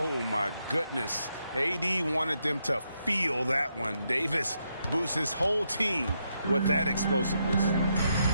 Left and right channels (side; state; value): both; inverted; correlation -0.80